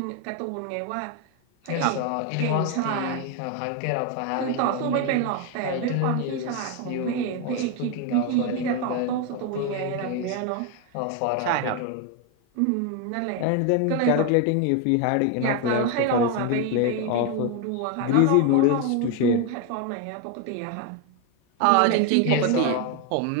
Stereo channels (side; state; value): both; different; correlation 0.01